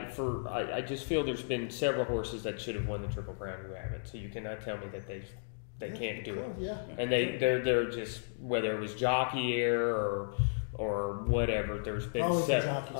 just feel there's been several horses that should have won the Triple Crown who haven't. So you cannot tell me that they can't do it. Yeah. And they're just, whether it was jockey error or whatever. There's been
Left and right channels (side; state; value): right; silent; digital silence